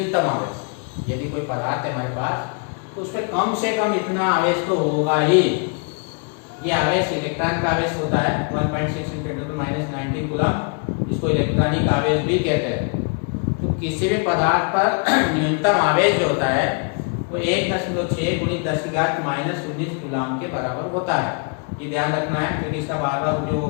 आवेश, यदि कोई पदार्थ है हमारे पास तो उसमें कम से कम इतना आवेश तो होगा ही। ये आवेश इलेक्ट्रॉन का आवेश होता है 1.6 × 10⁻⁹ कूलाम, इसको इलेक्ट्रॉनिक आवेश भी कहते हैं। तो किसी भी पदार्थ पर न्यूनतम आवेश जो होता है वो 1.6 × 10⁻⁻19 कूलाम के बराबर होता है। ये ध्यान रखना है क्योंकि इसका बार बार उपयोग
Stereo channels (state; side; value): quieter; right; 37.2 dB